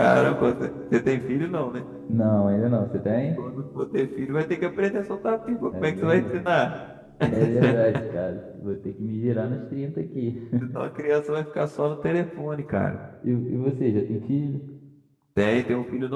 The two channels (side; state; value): both; identical; correlation 1.00